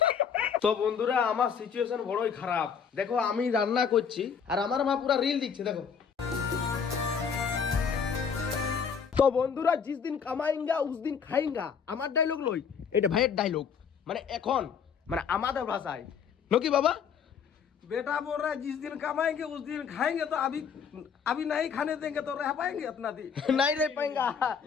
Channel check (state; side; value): quieter; right; 6.8 dB